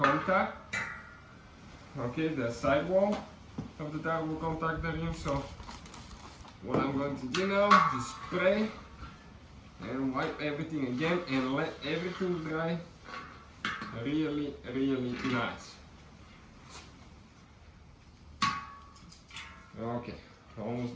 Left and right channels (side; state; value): both; identical; correlation 1.00